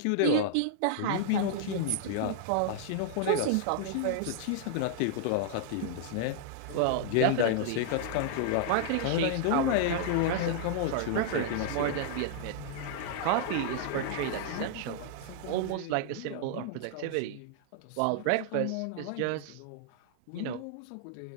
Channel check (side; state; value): both; different; correlation -0.01